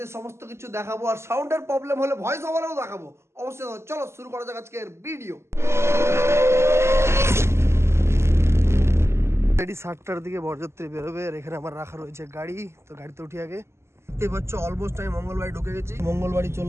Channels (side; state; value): left; late; 0.13 ms